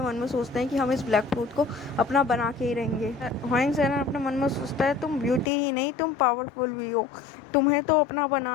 मन में सोचते हैं कि हम इस ब्लैक फ्लूट को अपना बना के ही रहेंगे। हुआंग सेरेन अपने मन में सोचता है तुम ब्यूटी ही नहीं, तुम पावरफुल भी हो, तुम्हें तो अपना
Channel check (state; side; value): drops out; right; at 5.5 s